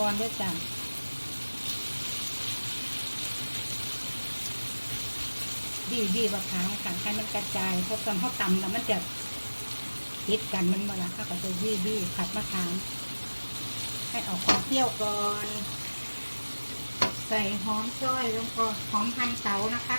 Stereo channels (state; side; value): inverted; both; correlation -1.00